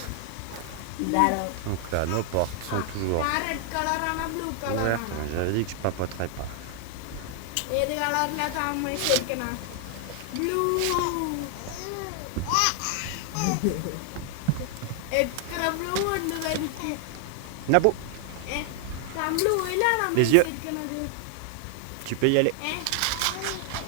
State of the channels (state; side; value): different; both; correlation 0.00